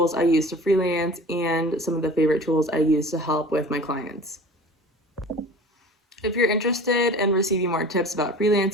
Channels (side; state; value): both; normal; correlation 0.40